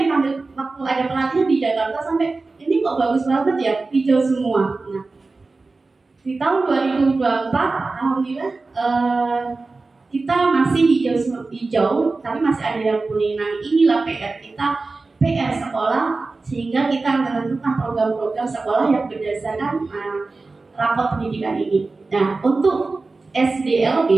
dipanggil, waktu ada pelatihan di Jakarta sampai ini kok bagus banget ya, hijau semua. Nah, di tahun 2024 alhamdulillah kita masih hijau, tapi masih ada yang kuning. Nah, inilah PR kita, PR sekolah, sehingga kita menentukan program-program sekolah yang berdasarkan rapor pendidikan ini. Nah, untuk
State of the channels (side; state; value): left; quieter; 3.7 dB